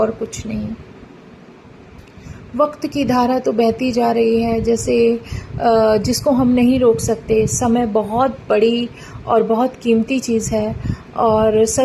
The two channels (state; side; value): identical; both; correlation 1.00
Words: कुछ नहीं। वक्त की धारा तो बहती जा रही है जैसे जिसको हम नहीं रोक सकते। समय बहुत बड़ी और बहुत कीमती चीज़ है और